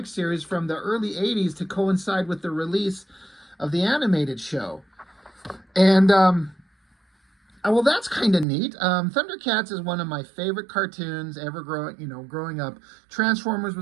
series from the early 80s to coincide with the release of the animated show. And well, that's kind of neat. Thundercats is one of my favorite cartoons ever growing up. Transformers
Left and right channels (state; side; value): drops out; left; at 8.5 s